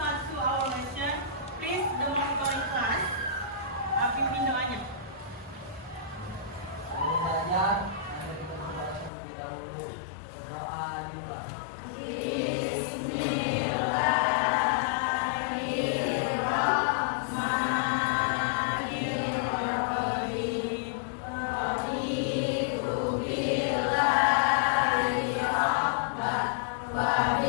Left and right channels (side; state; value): right; drops out; at 9.1 s